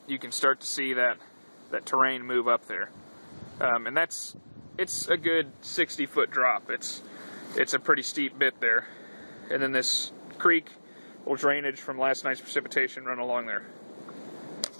you can start to see that terrain move up there. And it's a good 60-foot drop. It's a pretty steep bit there. And then this creek little drainage from last night's precipitation run along there.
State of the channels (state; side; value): inverted; both; correlation -1.00